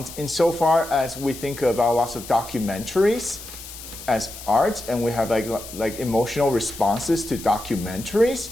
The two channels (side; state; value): left; noise; hiss, 13 dB below the sound